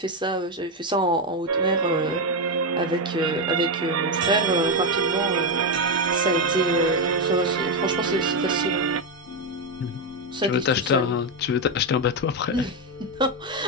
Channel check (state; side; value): normal; both; correlation 0.07